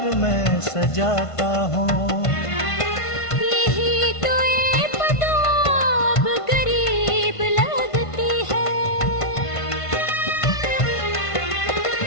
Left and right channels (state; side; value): late; right; 1.5 ms